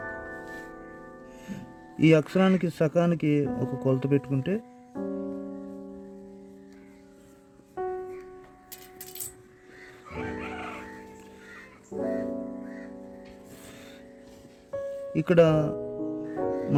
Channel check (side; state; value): both; identical; correlation 1.00